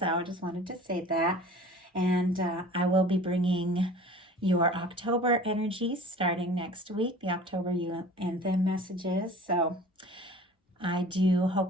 I just wanted to say that. And I will be bringing your October energies starting next week, the October you and them messages. So I do hope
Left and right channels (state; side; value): normal; both; correlation 0.43